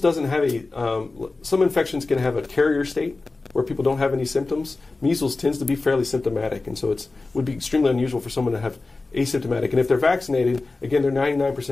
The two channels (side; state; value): right; quieter; 3.5 dB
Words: have some infections can have a carrier state where people don't have any symptoms. Measles tends to be fairly symptomatic, and so it would be extremely unusual for someone to have asymptomatic. And if they're vaccinated, again, they're